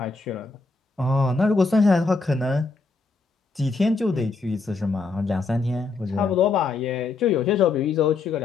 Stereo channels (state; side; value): quieter; right; 4.1 dB